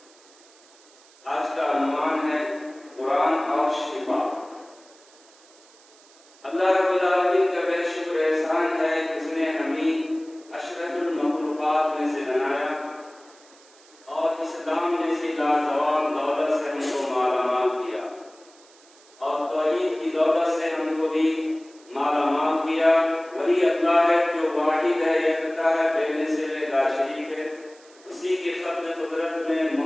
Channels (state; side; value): noise; right; hiss, 27 dB below the sound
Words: आज का अनुमान है कुरान और शिफा। अल्लाह रब्बुल आलमीन का बेहद शुक्र एहसान है कि उसने हमें अशरफुल मखलूक़ात में से बनाया और इस्लाम जैसी लाजवाब दौलत से हमको मालामाल किया और तौहीद की दौलत से हमको भी मालामाल किया। वही अल्लाह है जो वाहिद है, एकता है, बेमिसाल ला शरीक है। उसी के फज़्ल कुदरत में